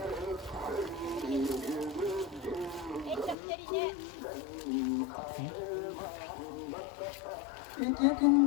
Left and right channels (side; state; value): right; drops out; at 3.4 s